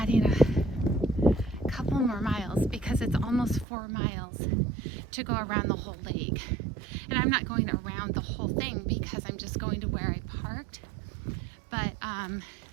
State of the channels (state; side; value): drops out; left; at 3.7 s